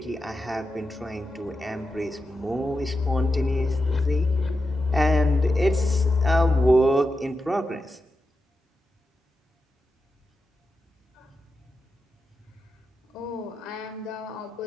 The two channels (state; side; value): normal; both; correlation 0.90